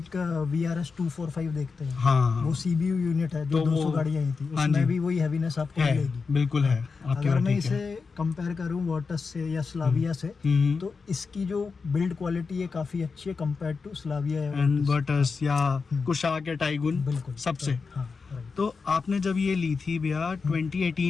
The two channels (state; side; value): quieter; right; 4.8 dB